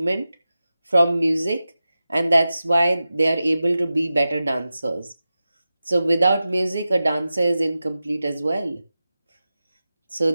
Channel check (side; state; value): both; inverted; correlation -0.93